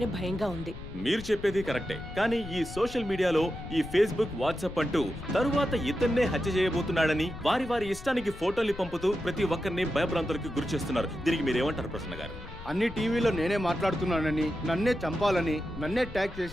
భయంగా ఉంది. మీరు చెప్పేది కరెక్టే, కానీ ఈ సోషల్ మీడియాలో ఈ ఫేస్బుక్, వాట్సాప్ అంటూ తరువాత ఇతన్నే హత్య చేయబోతున్నాడని వారి వారి ఇష్టానికి ఫోటోలు పంపుతూ ప్రతి ఒక్కరిని భయభ్రాంతులకు గురి చేస్తున్నారు. దీనికి మీరేమంటారు ప్రసన్న గారు? అన్ని టీవీలో నేనే మాట్లాడుతున్నానని, నన్నే చంపాలని, నన్నే ట్యాగ్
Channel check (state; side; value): noise; left; rumble, 14 dB below the sound